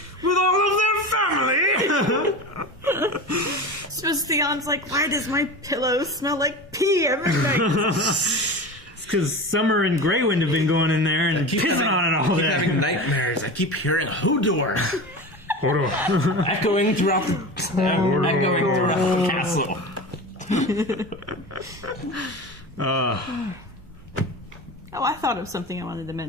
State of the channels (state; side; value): normal; both; correlation 0.29